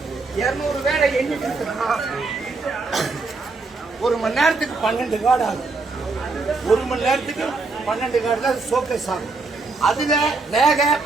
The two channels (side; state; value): left; quieter; 3.8 dB